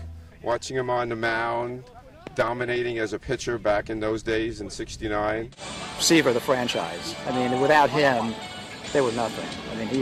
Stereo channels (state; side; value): identical; both; correlation 1.00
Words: Watching him on the mound, dominating as a pitcher back in those days in '69. Seaver, the franchise. I mean, without him, they were nothing. I mean,